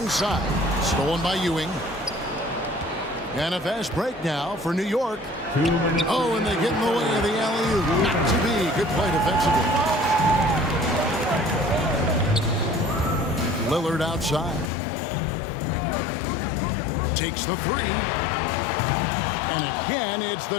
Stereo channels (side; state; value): right; drops out; at 14.7 s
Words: Stolen by Ewing. And a fast break now for New York. Oh, and they get in the way of the alley-oop. Not to be. Good play defensively. Lillard outside. Takes the 3. And again, it's